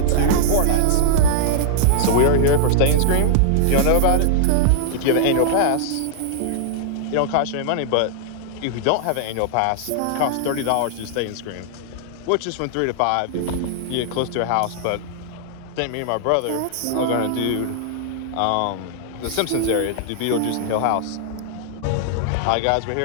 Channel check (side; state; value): both; different; correlation -0.01